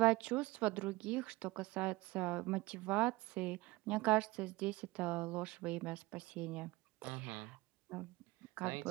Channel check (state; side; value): quieter; left; 21.1 dB